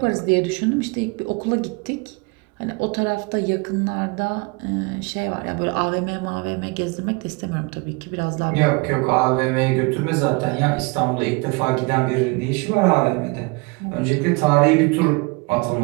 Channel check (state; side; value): quieter; left; 28.0 dB